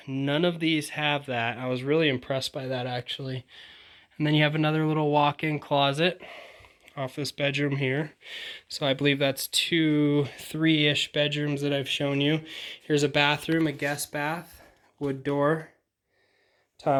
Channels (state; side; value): identical; both; correlation 1.00